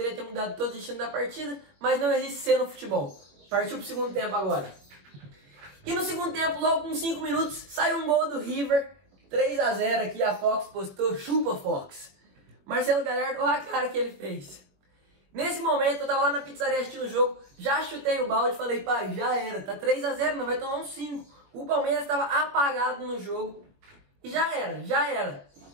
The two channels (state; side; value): late; left; 21 ms